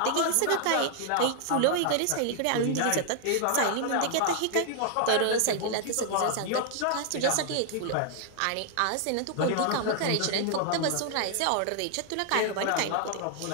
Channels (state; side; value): different; both; correlation 0.00